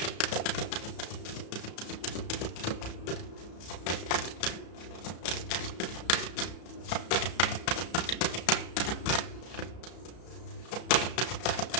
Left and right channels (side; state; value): right; late; 33 ms